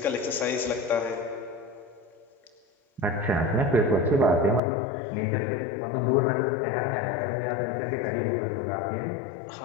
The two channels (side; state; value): right; drops out; at 4.6 s